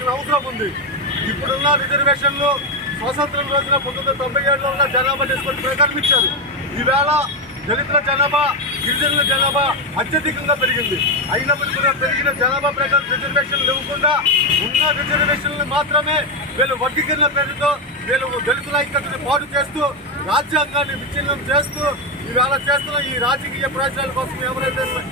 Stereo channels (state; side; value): normal; both; correlation 0.07